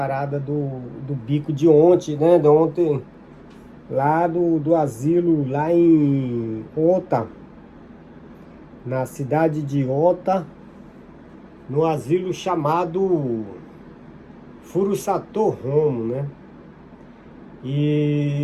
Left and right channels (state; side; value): identical; both; correlation 1.00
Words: do bico de ontem, né? De ontem, lá do asilo, lá em Ota, na cidade de Ota, no asilo chamado Furusato Homo, né?